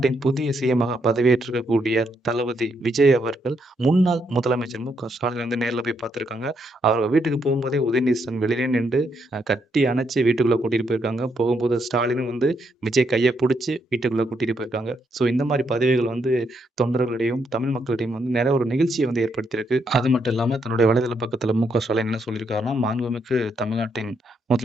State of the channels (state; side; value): normal; both; correlation 0.77